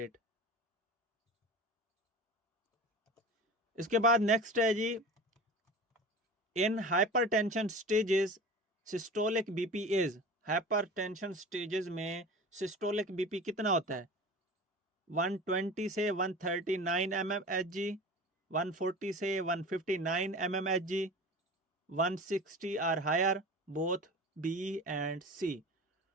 इसके बाद नेक्स्ट है जी in hypertension stages systolic BP is. Hypertension stages में सिस्टोलिक बीपी कितना होता है? 120 से 139 mmHg, 140 से 159 mmHg, 160 और higher, both B and C.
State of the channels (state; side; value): normal; both; correlation 0.35